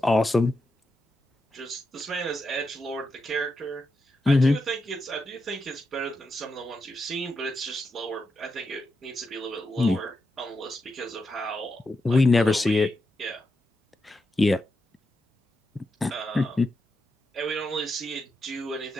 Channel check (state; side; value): normal; both; correlation 0.86